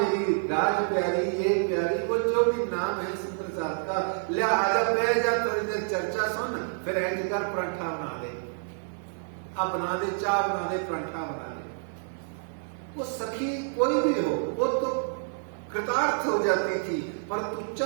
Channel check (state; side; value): silent; left; digital silence